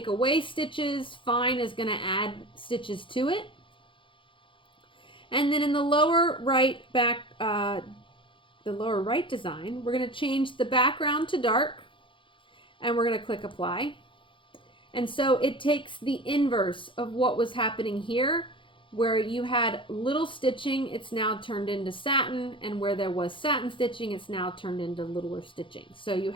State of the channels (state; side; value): late; right; 0.25 ms